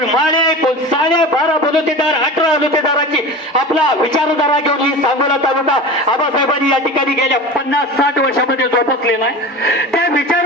माळे आहे, कोण साडे 12 बलुतेदार 18 बलुतेदाराची आपला विचारधारा घेऊन ही सांगोला तालुका आबासाहेबांनी या ठिकाणी गेल्या 50-60 वर्षामध्ये जोपासलेला आहे। त्या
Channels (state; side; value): normal; both; correlation 0.32